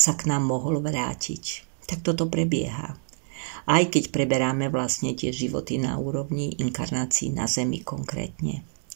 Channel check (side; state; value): left; silent; digital silence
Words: k nám mohol vrátiť. Tak toto prebieha. Aj keď preberáme vlastne tie životy na úrovni inkarnácií na Zemi konkrétne.